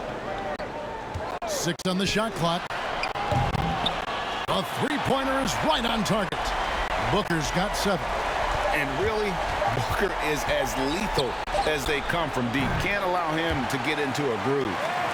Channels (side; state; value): both; identical; correlation 1.00